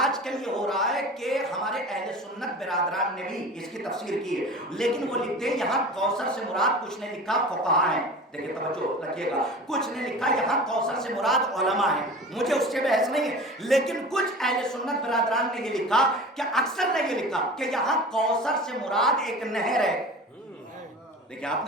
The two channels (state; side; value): normal; both; correlation 0.36